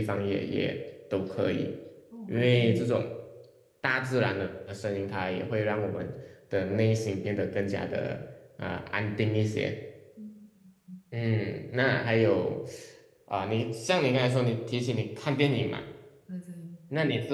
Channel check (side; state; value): both; identical; correlation 1.00